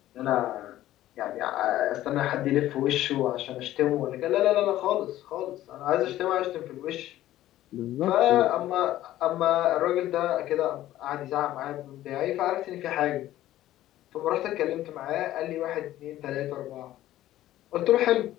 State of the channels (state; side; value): quieter; right; 14.2 dB